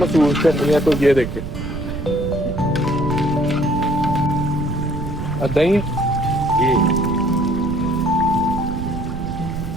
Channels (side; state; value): right; noise; rumble, 6 dB below the sound